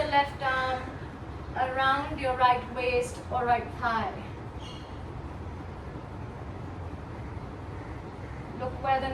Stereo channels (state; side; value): identical; both; correlation 1.00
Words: left arm around your right waist or right thigh. Look where the